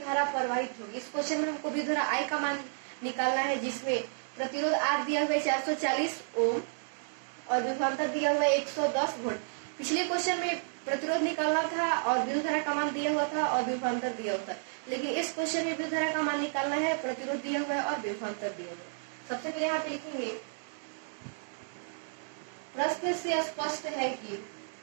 प्रवाहित होगी। इस क्वेश्चन में हमको विद्युत धारा I का मान निकालना है, जिसमें प्रतिरोध R दिया हुआ है 440 ओम और विभवांतर दिया हुआ है 110 वोल्ट। पिछले क्वेश्चन में प्रतिरोध निकालना था और विद्युत धारा का मान दिया हुआ था और विभवांतर दिया हुआ था, लेकिन इस क्वेश्चन में विद्युत धारा का मान निकालना है, प्रतिरोध दिया हुआ है और विभवांतर दिया हुआ है। सबसे पहले यहाँ पे लिखेंगे, प्रश्न से स्पष्ट है कि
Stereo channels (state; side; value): silent; left; digital silence